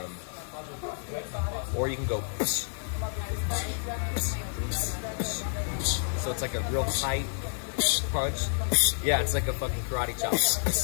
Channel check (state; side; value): silent; right; 58 dB below the other